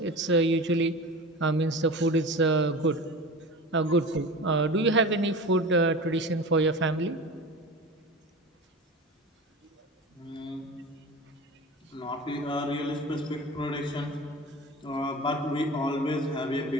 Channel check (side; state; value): both; normal; correlation 0.32